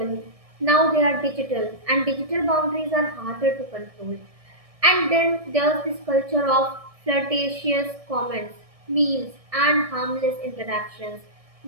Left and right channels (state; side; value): late; left; 1.6 ms